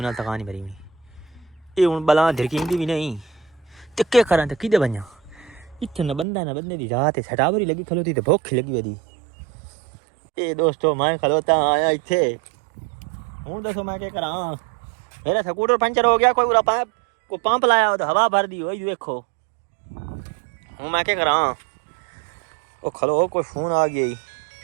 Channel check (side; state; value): left; drops out; at 6.2 s